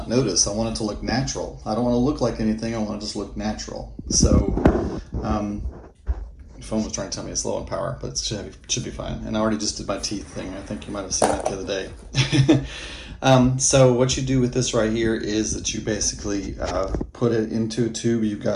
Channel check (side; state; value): both; identical; correlation 1.00